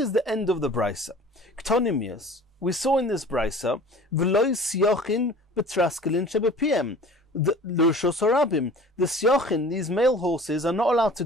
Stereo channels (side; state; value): both; normal; correlation 0.45